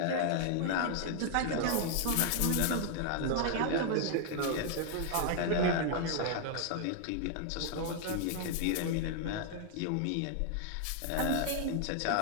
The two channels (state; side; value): different; both; correlation 0.00